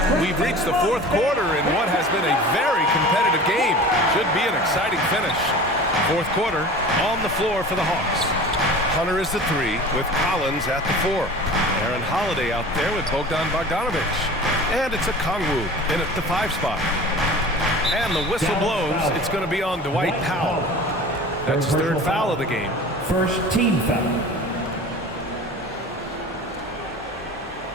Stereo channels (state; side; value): normal; both; correlation 0.39